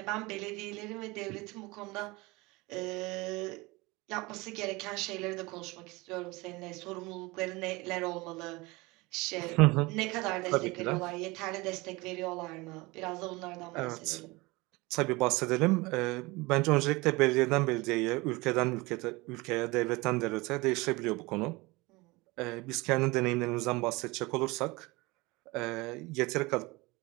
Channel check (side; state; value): left; quieter; 23.4 dB